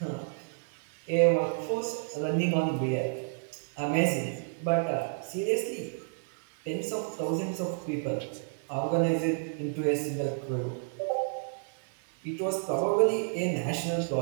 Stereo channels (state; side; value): silent; left; digital silence